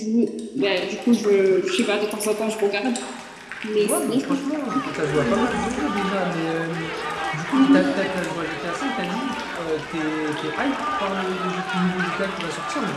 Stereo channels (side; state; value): both; identical; correlation 1.00